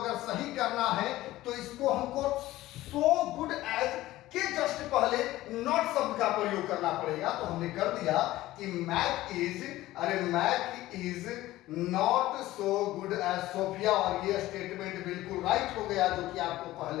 सही करना है तो इसको हमको सो गुड एज के जस्ट पहले नॉट शब्द का प्रयोग करना पड़ेगा। तो हमने कर दिया कि Mac is not so good as Sophia, और ये स्टेटमेंट बिल्कुल राइट हो गया, जो कि आपको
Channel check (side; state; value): right; quieter; 16.3 dB